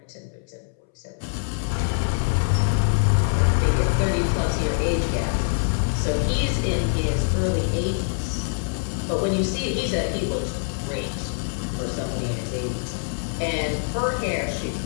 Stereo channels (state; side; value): silent; right; 62 dB below the other